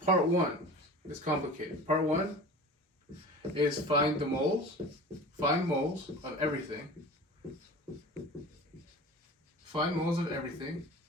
Part one is complicated. Part one is find moles of everything. Find moles of everything.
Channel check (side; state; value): both; normal; correlation 0.37